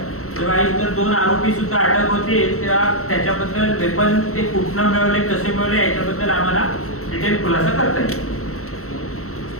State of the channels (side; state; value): right; late; 0.64 ms